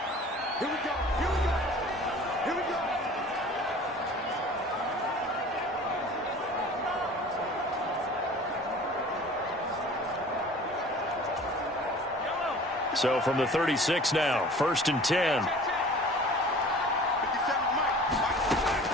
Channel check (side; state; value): both; normal; correlation 0.45